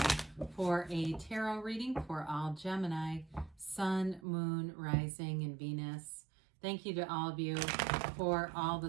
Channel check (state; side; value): drops out; left; at 4.2 s